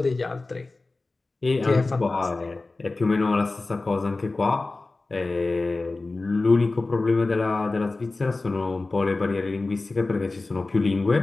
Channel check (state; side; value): quieter; right; 3.4 dB